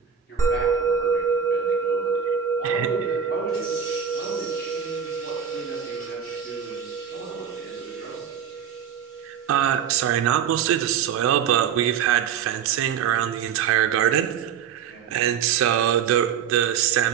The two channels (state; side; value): quieter; left; 8.1 dB